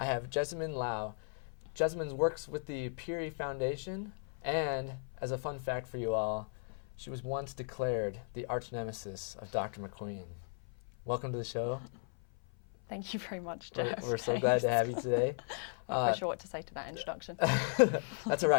have Jezmine Lau. Jezmine works with the Peri Foundation, and as a fun fact for you all, she was once declared the arch nemesis of Dr. McQueen. Welcome to the show. Thank you very much, Jeff. We're so glad to have you today. I'm not quite sure what to say to that introduction. That's all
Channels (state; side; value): silent; right; 54 dB below the other